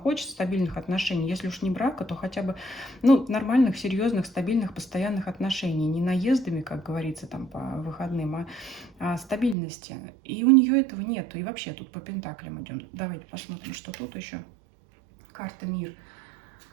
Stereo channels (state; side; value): drops out; left; at 9.6 s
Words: стабильных отношений. Если уж не брака, то хотя бы нормальных, серьезных, стабильных, постоянных отношений. Не наездами, как говорится, там по выходным, а стабильности. И у нее этого нету. И вообще тут по пентаклям идем. Давайте посмотрим, что тут еще. Карта мир.